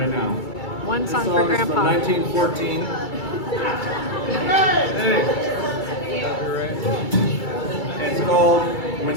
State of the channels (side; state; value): right; late; 2.3 ms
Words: now. One This song for song is Grandpa. from 1914. Hey. It's called